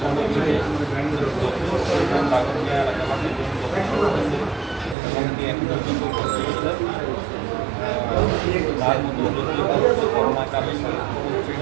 দাগনিয়া এলাকাবাসীর জন্য করতেছে এবং কি এখন পর্যন্ত করতেছে। তার মধ্যে যদি করোনাকালীন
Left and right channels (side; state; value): left; drops out; at 5.0 s